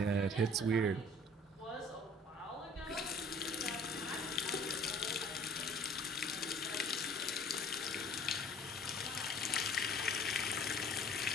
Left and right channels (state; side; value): normal; both; correlation 0.51